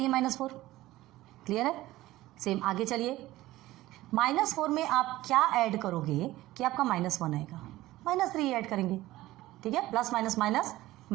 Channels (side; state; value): left; quieter; 16.8 dB